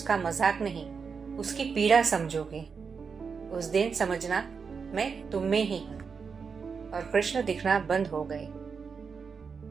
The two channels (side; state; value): left; quieter; 5.6 dB